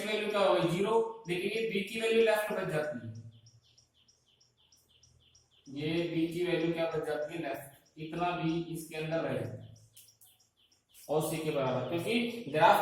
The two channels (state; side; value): identical; both; correlation 1.00